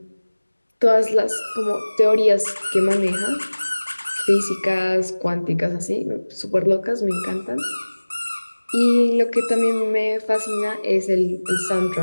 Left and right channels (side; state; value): both; inverted; correlation -1.00